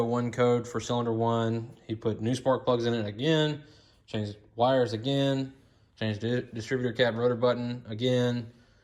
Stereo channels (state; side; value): identical; both; correlation 1.00